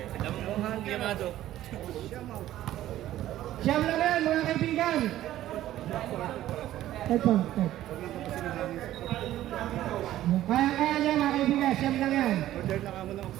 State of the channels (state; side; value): quieter; left; 13.6 dB